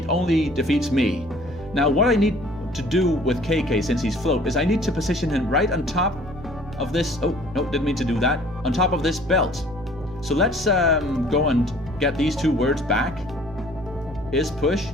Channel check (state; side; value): noise; right; hum, 16 dB below the sound